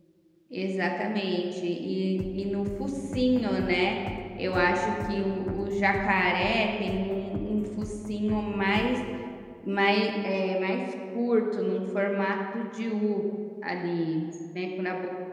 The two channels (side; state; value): both; identical; correlation 1.00